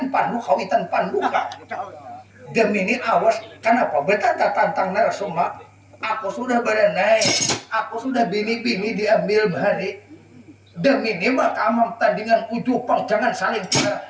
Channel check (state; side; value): identical; both; correlation 1.00